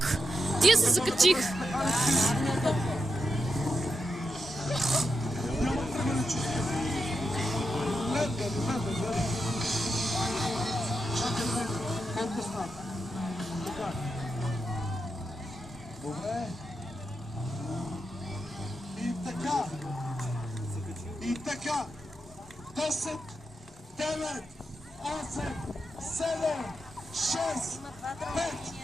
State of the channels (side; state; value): both; normal; correlation 0.86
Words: Тия се закачиха. Добре. И така. 10, 9, 8, 7, 6, 5,